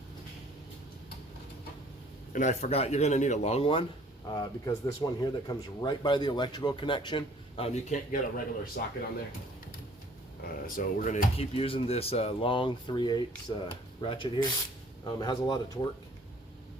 And I forgot, you're going to need a long one because this one here that comes right by the electrical connection, you can't get a regular socket on there. So we're going to keep using this long 3/8 ratchet here. It has a lot of torque.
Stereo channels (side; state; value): both; normal; correlation 0.55